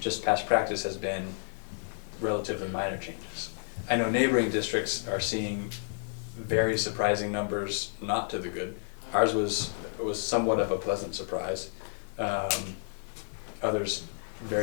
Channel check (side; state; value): right; silent; digital silence